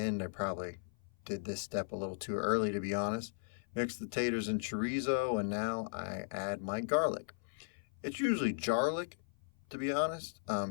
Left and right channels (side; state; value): right; silent; 53 dB below the other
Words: I probably did this step a little too early, to be honest. Mix the taters and chorizo, and now I add my garlic. It's usually jarlic, to be honest.